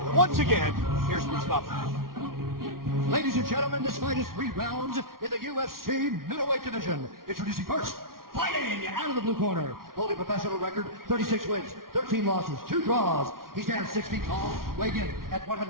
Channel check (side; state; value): left; late; 0.93 ms